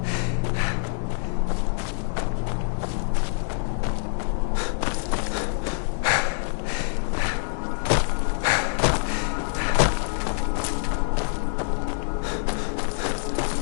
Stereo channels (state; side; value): silent; right; digital silence